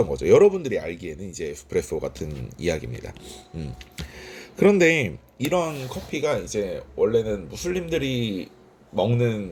거죠. 여러분들이 알기에는 이제 에스프레소 같은 이야기입니다. 그런데 이런 커피가 이제 원래는 무슬림들이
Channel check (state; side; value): identical; both; correlation 1.00